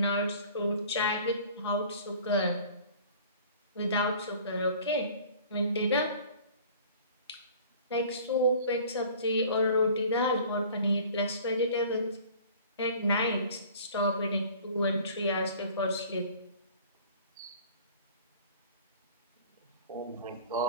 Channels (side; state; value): both; inverted; correlation -0.47